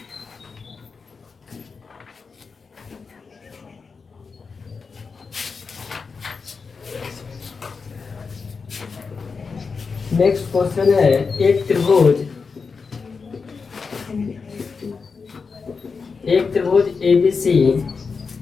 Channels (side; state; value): right; quieter; 5.0 dB